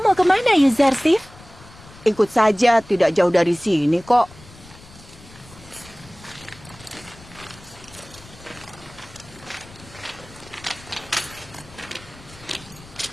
kemana, Yuzarsif? Ikut saja, tidak jauh dari sini kok.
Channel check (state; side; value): noise; left; rumble, 21 dB below the sound